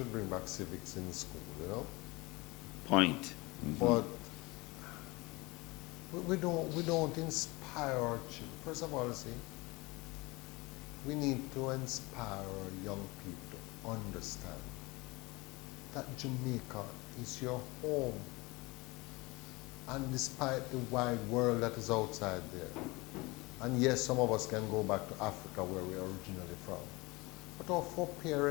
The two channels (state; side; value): quieter; right; 24.0 dB